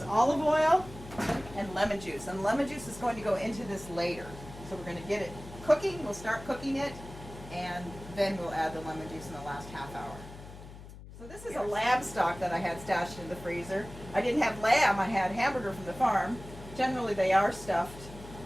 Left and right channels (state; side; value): noise; left; hum, 15 dB below the sound